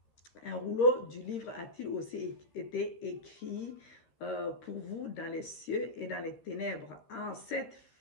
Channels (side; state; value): right; late; 13 ms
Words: Un rouleau du livre a-t-il aussi été écrit pour vous dans les cieux et dans les ténèbres? En cette